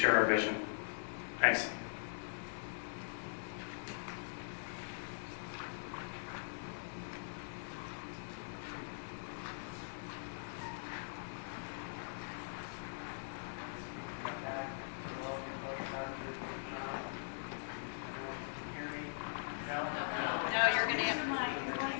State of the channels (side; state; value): right; silent; digital silence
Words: our vision. Thanks.